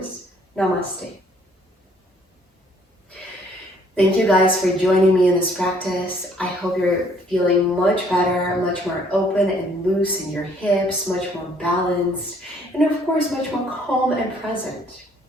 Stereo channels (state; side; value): normal; both; correlation 0.62